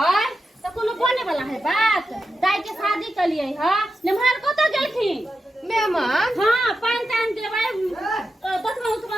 त कोनो बने वाला है बात। दाई के शादी कलिए ह निमहार कत गेलखिन मेहमान। हां पान तान देबै दतमा उतमा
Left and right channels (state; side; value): normal; both; correlation 0.89